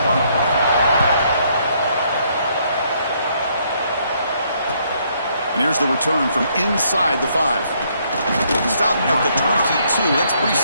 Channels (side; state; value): both; inverted; correlation -0.70